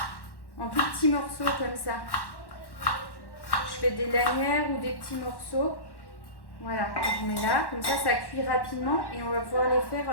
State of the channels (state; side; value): late; right; 1.1 ms